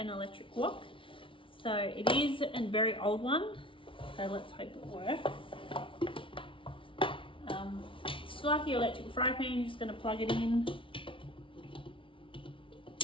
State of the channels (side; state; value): right; late; 0.25 ms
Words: electric wok. So it is a very old one, so let's hope it works. It's like your electric fry pan, you're just going to plug it in.